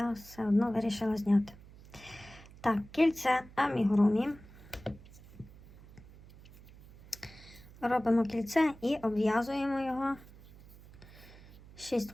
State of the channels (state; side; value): noise; right; hum, 21 dB below the sound